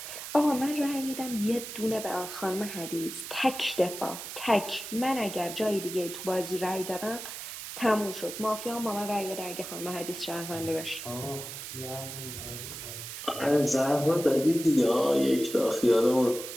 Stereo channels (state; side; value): noise; right; hiss, 9 dB below the sound